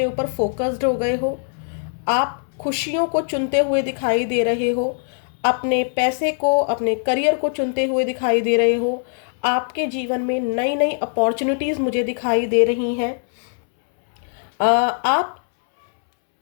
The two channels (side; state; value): right; silent; 65 dB below the other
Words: ऊपर फोकस्ड हो गए हो। आप खुशियों को चुनते हुए दिखाई दे रहे हो, अपने पैसे को, अपने करियर को चुनते हुए दिखाई दे रहे हो। आपके जीवन में नई नई अपॉर्चुनिटीज़ मुझे दिखाई दे रही हैं। आप